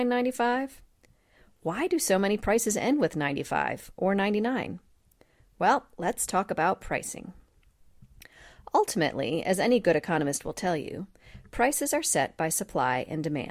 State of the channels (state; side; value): identical; both; correlation 1.00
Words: Why do so many prices end with 95 or 99? Well, let's talk about pricing. Ultimately, as any good economist will tell you, prices are set by supply and